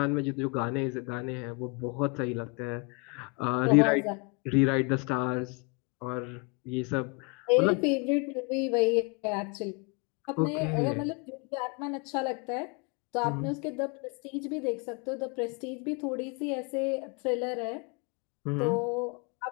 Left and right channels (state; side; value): quieter; right; 30.7 dB